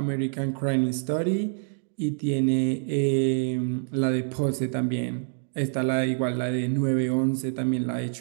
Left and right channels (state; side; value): silent; left; digital silence